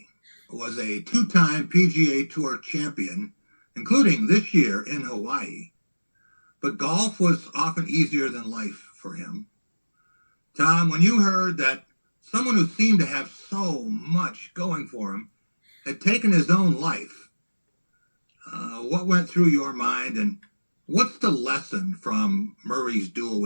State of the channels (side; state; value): both; inverted; correlation -1.00